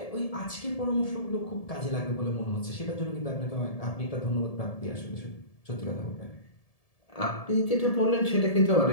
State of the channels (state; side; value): late; right; 1.7 ms